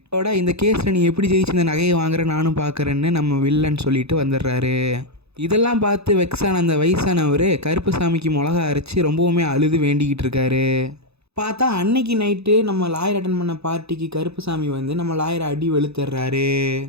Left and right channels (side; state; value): left; late; 0.79 ms